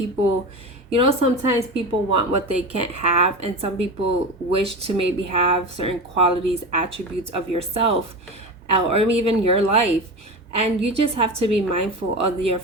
sometimes people want what they can't have, and some people wish to maybe have certain qualities, attributes of yourself, or even your life. And you just have to be mindful of your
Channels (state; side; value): normal; both; correlation 0.25